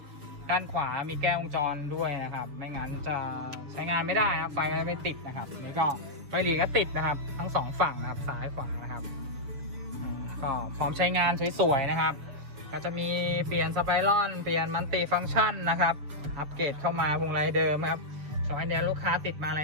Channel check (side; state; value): left; late; 7.0 ms